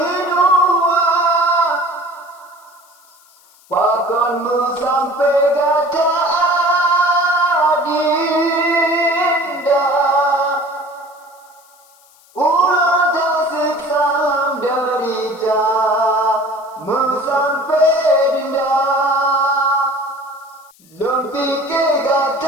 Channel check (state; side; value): noise; left; hiss, 29 dB below the sound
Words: dua, pakonmu sampai gata adinda. Ulang tasik salam derita, mu sampai dinda. Lon pikir